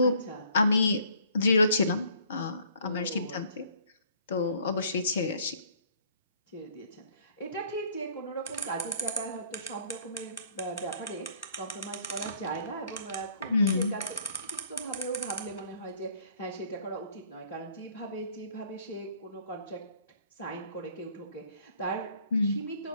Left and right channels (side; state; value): both; inverted; correlation -0.59